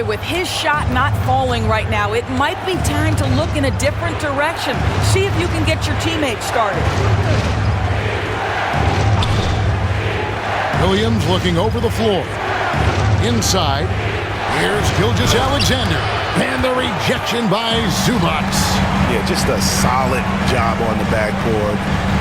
with his shot not falling right now, it might be time to look in a different direction. See if you can get your teammates started. Williams looking over the floor. Inside, here's Gilgeous-Alexander. And the rejection by Zubac. Yeah, just a solid job on the backboard.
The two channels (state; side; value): identical; both; correlation 1.00